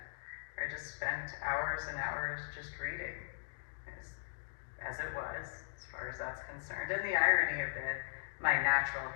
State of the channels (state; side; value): silent; right; digital silence